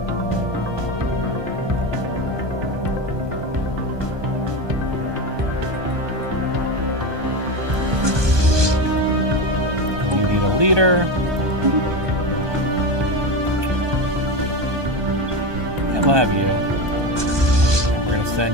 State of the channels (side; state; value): left; late; 1.2 ms